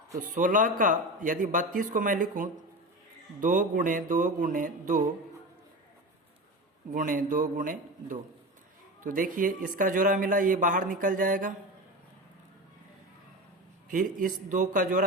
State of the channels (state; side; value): normal; both; correlation 0.26